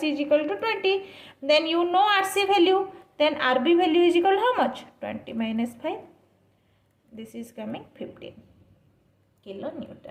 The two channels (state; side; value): identical; both; correlation 1.00